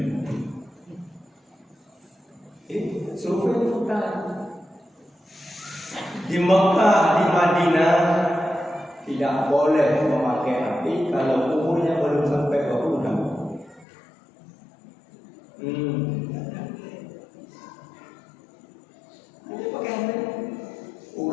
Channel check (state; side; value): drops out; right; at 13.9 s